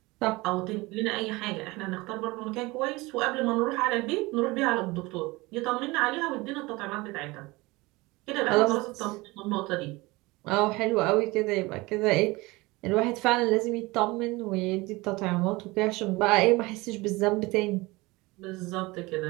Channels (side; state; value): left; quieter; 22.5 dB